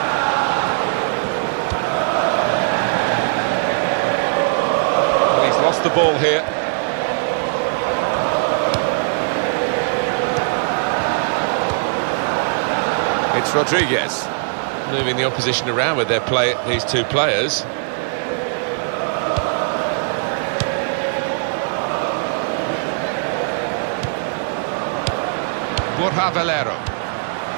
Well, he's lost the ball here. It's Rodriguez moving the opposition around with these two players. Valero.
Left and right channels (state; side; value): silent; left; digital silence